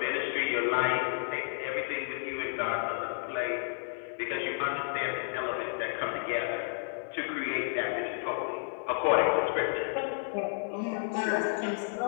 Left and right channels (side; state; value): right; silent; 57 dB below the other